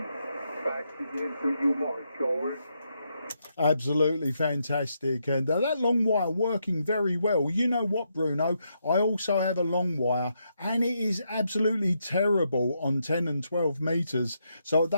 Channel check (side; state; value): both; inverted; correlation -0.80